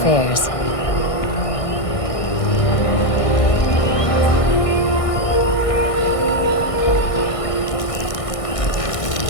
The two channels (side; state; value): right; late; 1.6 ms